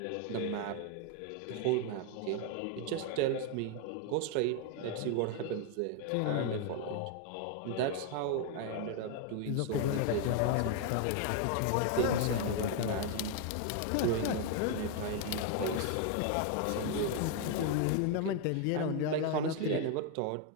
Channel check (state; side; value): different; both; correlation 0.00